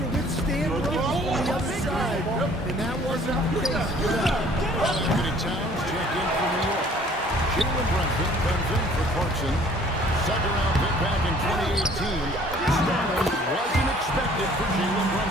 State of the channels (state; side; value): normal; both; correlation 0.55